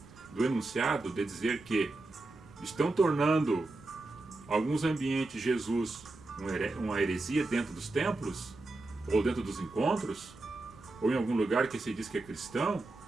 do enunciado de dizer que estão tornando alguns ambientes Jesus uma heresia dentro dos templos, ou dentro dos encontros, ou em algum lugar que se diz que é cristão,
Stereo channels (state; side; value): quieter; left; 3.0 dB